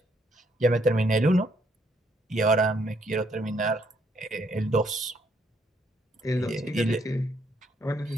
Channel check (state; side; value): normal; both; correlation 0.71